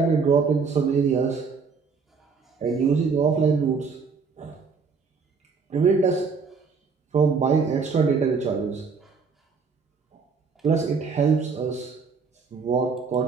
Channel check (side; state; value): left; quieter; 5.1 dB